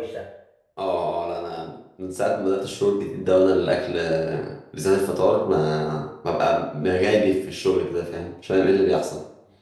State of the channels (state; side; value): identical; both; correlation 1.00